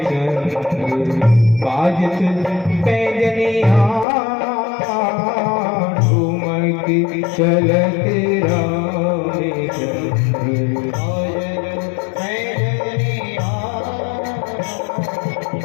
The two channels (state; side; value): drops out; right; at 4.0 s